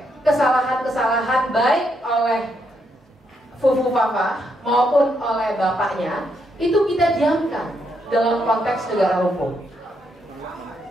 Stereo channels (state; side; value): normal; both; correlation 0.78